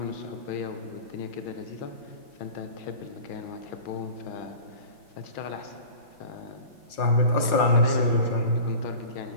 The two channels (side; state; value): right; late; 5.7 ms